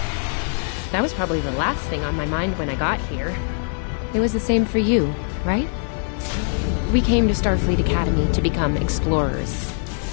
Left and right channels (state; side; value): silent; right; 64 dB below the other